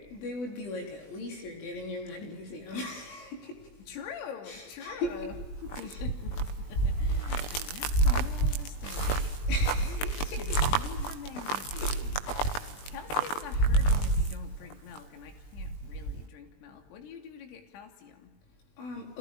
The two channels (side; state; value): right; late; 20 ms